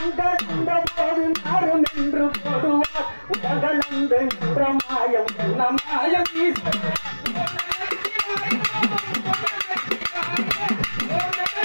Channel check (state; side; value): inverted; both; correlation -1.00